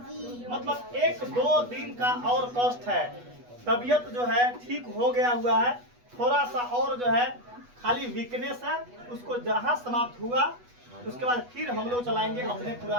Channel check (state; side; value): late; left; 8.2 ms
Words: मतलब 1-2 दिन का और कष्ट है। तबीयत जो है ठीक हो गया हुआ है, थोड़ा सा और जो है खाली वीकनेस है, उसको जहाँ समाप्त हुआ उसके बाद फिर हम लोग चलाएंगे अपने